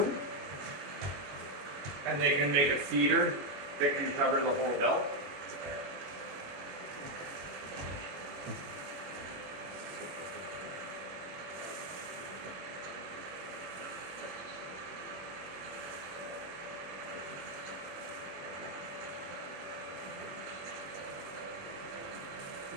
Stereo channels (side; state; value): left; late; 21 ms